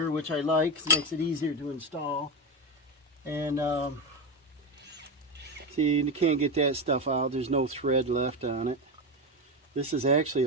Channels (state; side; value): normal; both; correlation 0.15